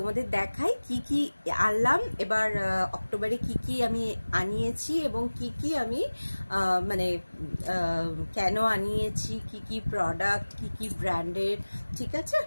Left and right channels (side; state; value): both; inverted; correlation -1.00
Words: দেখাই কি কি আনলাম এবার অক্টোবরে, কি কি আমি আনিয়েছি এবং কি কি আমি মানে কেন আনিয়েছি, কি কি প্রোডাক্ট, কি কি ব্র্যান্ডের। ঠিক আছে,